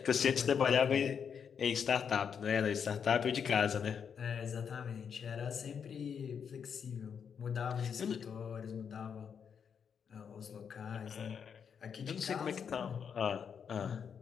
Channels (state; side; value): quieter; right; 7.1 dB